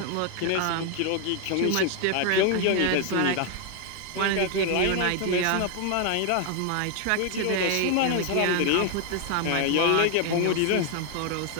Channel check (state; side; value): different; both; correlation 0.00